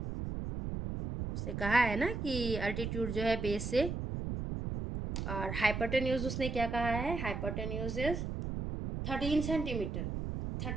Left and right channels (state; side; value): noise; right; rumble, 4 dB below the sound